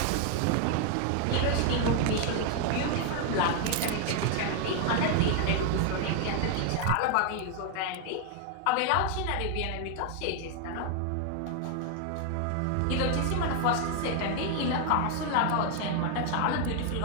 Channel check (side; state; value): both; different; correlation 0.00